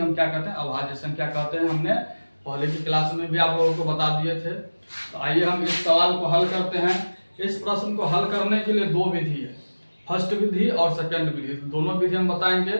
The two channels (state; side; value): inverted; both; correlation -1.00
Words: क्या कहते हैं, अभाज्य संख्या कहते हैं। हमने पहले की क्लास में भी आप लोगों को बता दिए थे। तो आइए हम इस सवाल को हल करते हैं। इस प्रश्न को हल करने के लिए दो विधि है, फर्स्ट विधि और सेकंड विधि। दोनों विधि हम बताएंगे।